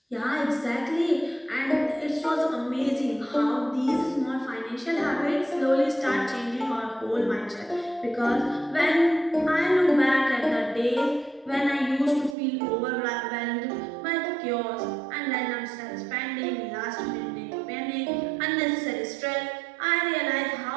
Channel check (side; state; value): left; drops out; at 12.4 s